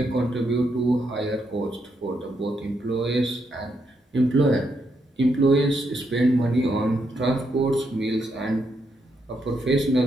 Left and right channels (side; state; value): both; normal; correlation 0.79